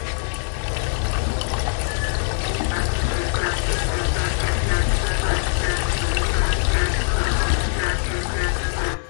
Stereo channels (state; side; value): silent; right; 56 dB below the other